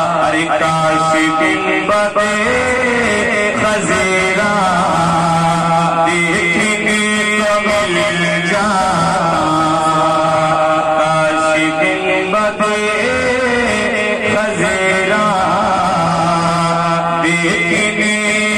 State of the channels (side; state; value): both; identical; correlation 1.00